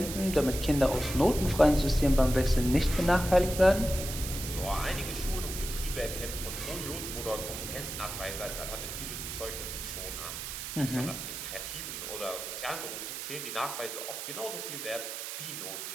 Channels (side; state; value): right; noise; hiss, 6 dB below the sound